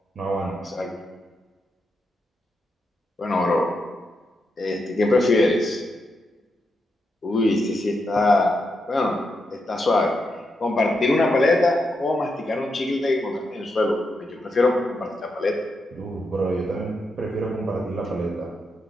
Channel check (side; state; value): both; normal; correlation 0.84